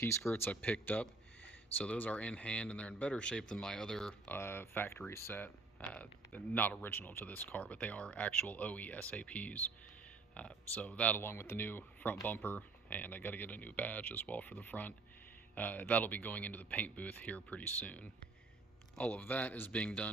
skirts I picked up. So those are in hand and they're in better shape than my other factory set. Not original to this car, but they are actual OE SAPs. So that along with the new front bumper, and I got to get a new badge as well for the front. That'll be going into the paint booth here pretty soon. All of that is being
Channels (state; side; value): quieter; left; 3.7 dB